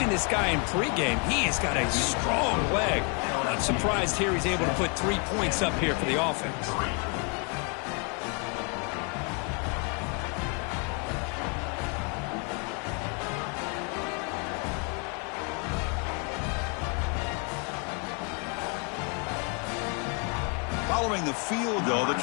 this guy in pregame. He has got a strong leg. Not surprised here he's able to put 3 points up here for the offense. Following the field goal, the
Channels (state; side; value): quieter; right; 36.3 dB